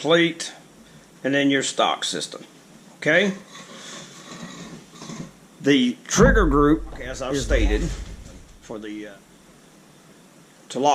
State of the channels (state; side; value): identical; both; correlation 1.00